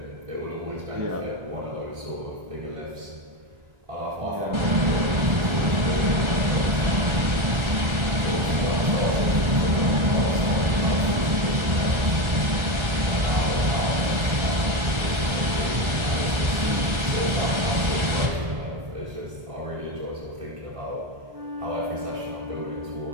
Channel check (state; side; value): late; left; 1.3 ms